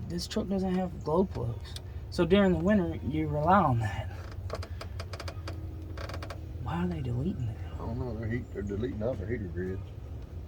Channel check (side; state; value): both; identical; correlation 1.00